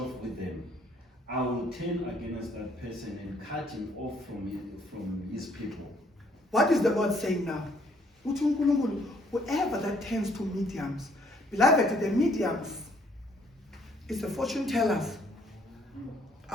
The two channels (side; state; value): both; normal; correlation 0.64